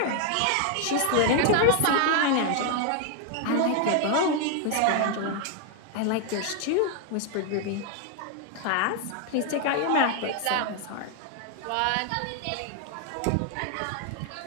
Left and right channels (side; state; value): both; different; correlation 0.00